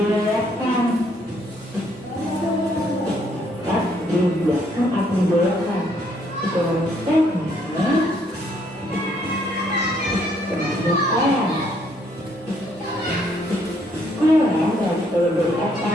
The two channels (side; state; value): both; normal; correlation 0.68